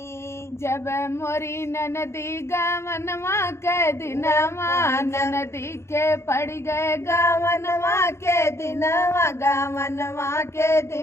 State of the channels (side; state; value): right; late; 0.13 ms